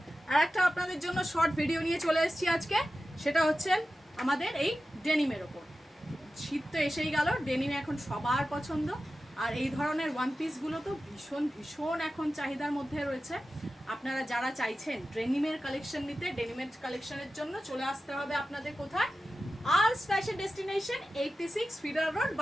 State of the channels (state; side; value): normal; both; correlation 0.93